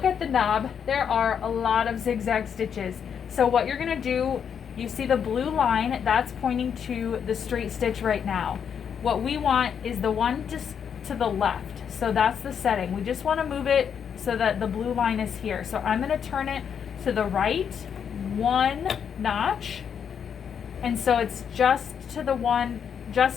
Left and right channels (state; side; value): quieter; right; 7.6 dB